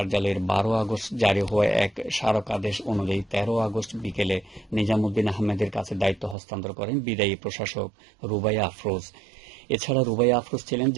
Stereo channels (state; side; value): drops out; left; at 6.4 s